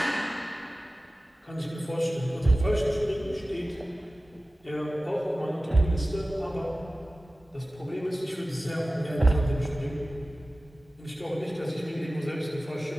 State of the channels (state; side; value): normal; both; correlation 0.96